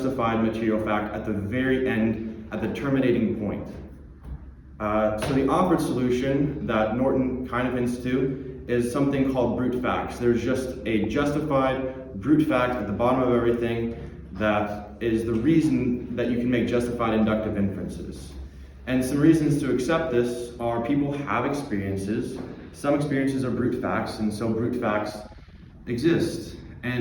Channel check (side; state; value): both; identical; correlation 1.00